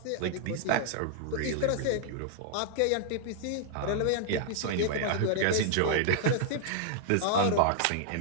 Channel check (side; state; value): both; different; correlation -0.01